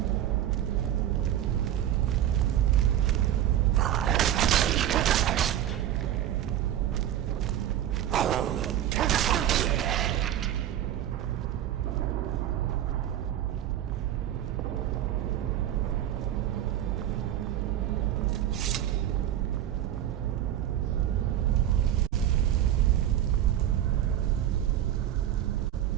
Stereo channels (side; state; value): left; quieter; 11.6 dB